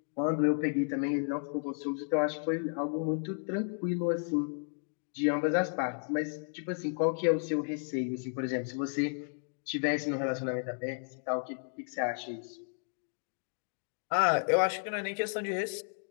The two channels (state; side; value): silent; right; 56 dB below the other